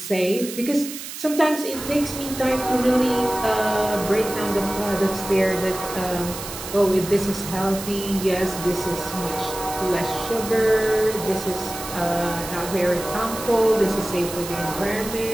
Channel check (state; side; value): noise; right; hiss, 10 dB below the sound